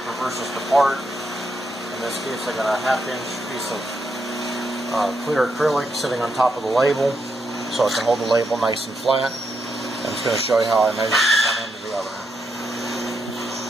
reverses the part. In this case, I got a 1/2-inch piece of clear acrylic sitting on top of the label, so I can hold the label nice and flat. I'm just going to show you how I measure from one end to the other.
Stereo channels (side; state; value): both; normal; correlation 0.81